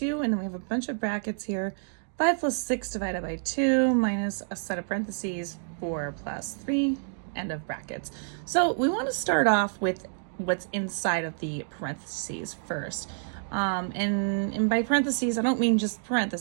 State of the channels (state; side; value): silent; left; digital silence